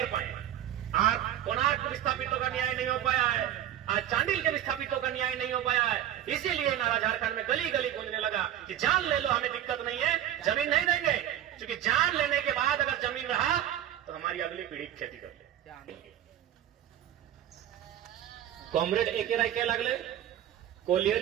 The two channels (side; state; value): left; quieter; 11.5 dB